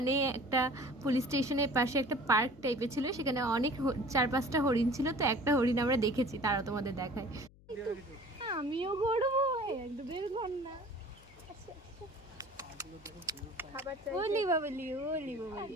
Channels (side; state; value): left; noise; hum, 25 dB below the sound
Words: একটা পুলিশ স্টেশনের পাশে একটা পার্ক টাইপের ছিল, সেখানে অনেক 4-5টা হরিণ ছিল। তো একটা হরিণ আমরা দেখেছি, তারা তোমাদের দেখায়। আমিও করবো একটু বের কর না। ওলি বাবলি ওলি বাবলি